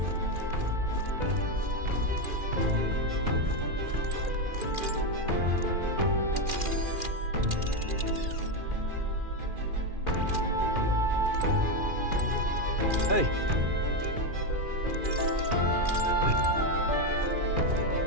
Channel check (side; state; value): left; late; 2.4 ms